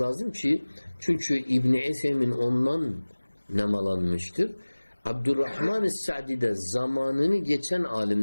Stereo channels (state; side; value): inverted; both; correlation -1.00